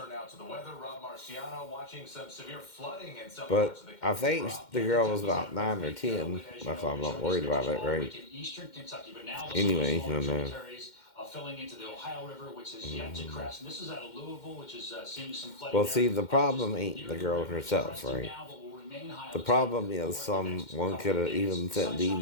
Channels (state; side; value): late; right; 2.1 ms